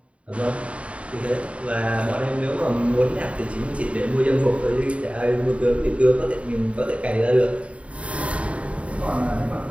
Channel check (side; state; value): left; late; 0.063 ms